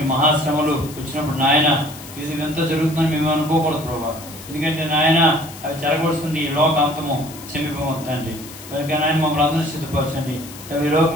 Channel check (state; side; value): noise; left; hiss, 16 dB below the sound